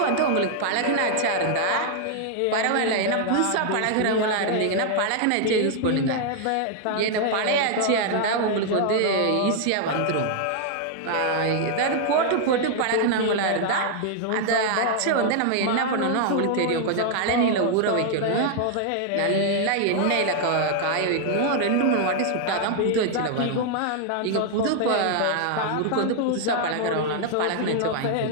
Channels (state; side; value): different; both; correlation 0.00